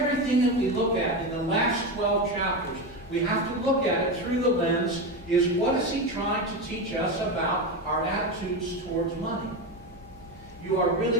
that we look at in the last 12 chapters, we have to look at it through the lens, is what is he trying to teach us about our attitudes towards money? You are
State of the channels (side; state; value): both; normal; correlation 0.17